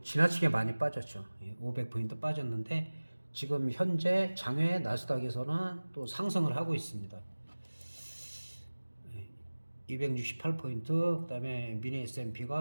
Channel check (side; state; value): both; inverted; correlation -1.00